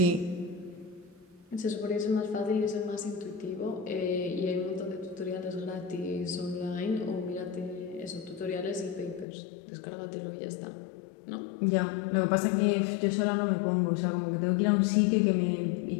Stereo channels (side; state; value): right; drops out; at 9.2 s